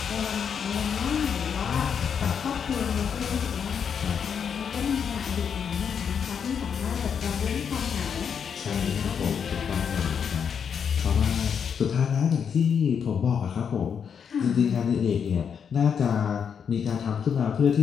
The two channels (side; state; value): right; quieter; 7.2 dB